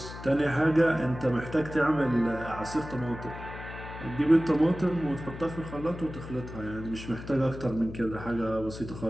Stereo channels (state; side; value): noise; left; hum, 12 dB below the sound